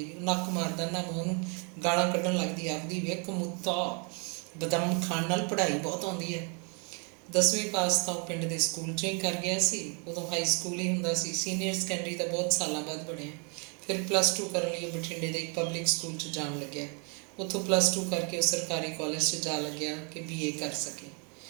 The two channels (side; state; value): left; quieter; 35.8 dB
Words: ਉਹ ਨੱਕ ਮਾਰਦਾ। ਨਾਮੋ ਉਹਨੂੰ ਗਾਲਾਂ ਕੱਢਣ ਲੱਗਦੀ, ਆਖਦੀ ਵੇਖ ਮੁੱਤਾ, ਬਦਾਮ ਖਾਣ ਨਾਲ ਪੜ੍ਹਾਈ ਬਹੁਤ ਆਉਂਦੀ ਹੈ। 10ਵੀਂ ਪਾਸ ਤਾਂ ਉਹ ਪਿੰਡ ਦੇ ਸਕੂਲ 'ਚੋਂ ਹੀ ਕਰ ਗਿਆ ਸੀ। ਉਦੋਂ ਹਾਈ ਸਕੂਲ ਹੀ ਹੁੰਦਾ ਸੀ। ਸੀਨੀਅਰ ਸੈਕੰਡਰੀ ਤਾਂ ਬਹੁਤ ਸਾਲਾਂ ਬਾਅਦ ਬਣਿਆ। ਫਿਰ +2 ਕਰਨ ਲਈ ਉਹ ਬਠਿੰਡੇ ਦੇ ਇੱਕ ਪਬਲਿਕ ਸਕੂਲ 'ਚ ਜਾਣ ਲੱਗਿਆ। ਉੱਥੋਂ +2 ਕਰਕੇ ਉਹ ਸਰਕਾਰੀ ਕਾਲਜ 'ਚ ਜਾ ਲੱਗਿਆ ਕਿ BA ਕਰ ਸਕੇ।